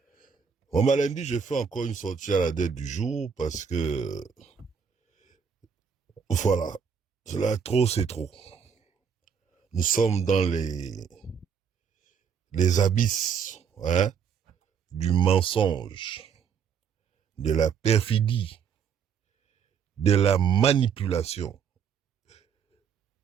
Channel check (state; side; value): quieter; left; 6.9 dB